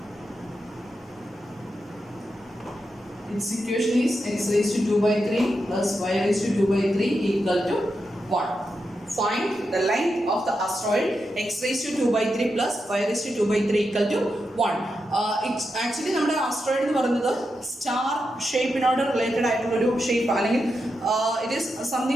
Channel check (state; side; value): normal; both; correlation 0.87